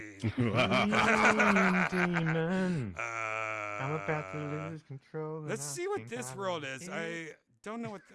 Demon. I'm about to lose control. and let's I see what think this I world like is. it. I don't know what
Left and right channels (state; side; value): identical; both; correlation 1.00